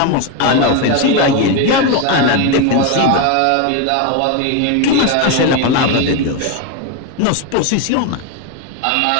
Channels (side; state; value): both; different; correlation 0.02